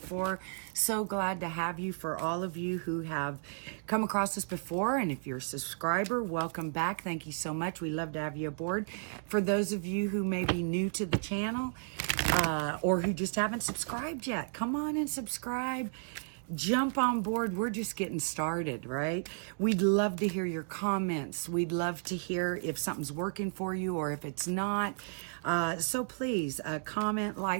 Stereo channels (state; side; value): silent; left; digital silence